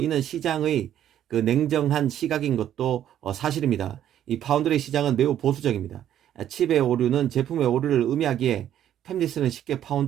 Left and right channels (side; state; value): left; quieter; 10.9 dB